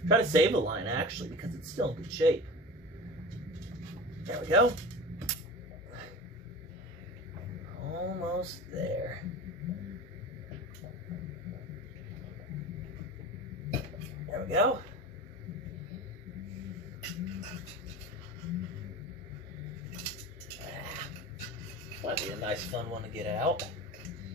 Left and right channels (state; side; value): normal; both; correlation 0.32